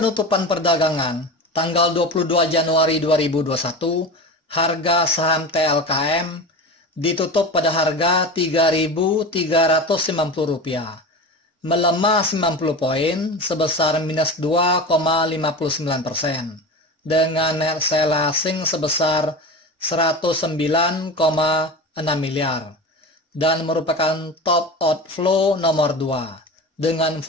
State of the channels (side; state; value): both; normal; correlation 0.29